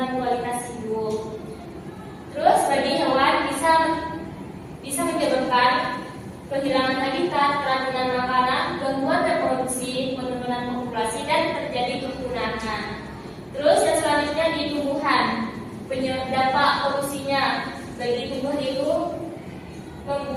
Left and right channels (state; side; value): identical; both; correlation 1.00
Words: kualitas hidup. Terus bagi hewan bisa menyebabkan kehilangan habitat, keracunan makanan, gangguan reproduksi, penurunan populasi, dan terjadi kepunahan. Terus yang selanjutnya di tumbuhan, dampak polusinya bagi tumbuh itu